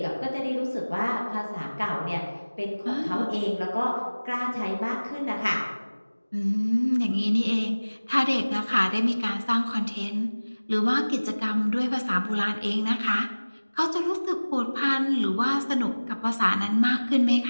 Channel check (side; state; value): both; inverted; correlation -1.00